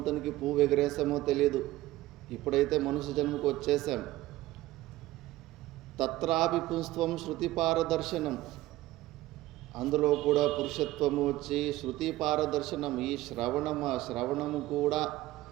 పువ్వు ఎగరేసామో తెలియదు. ఇప్పుడైతే మనుష్య జన్మకు వచ్చేసాం. తత్రాపి పుంస్త్వం శృతి పారదర్శనం, అందులో కూడా పురుషత్వము వచ్చి శృతి పారదర్శనం. ఈ శ్రవణము కూడా,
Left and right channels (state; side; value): quieter; left; 16.7 dB